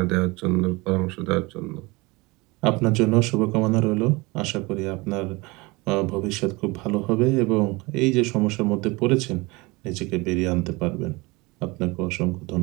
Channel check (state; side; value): quieter; left; 24.3 dB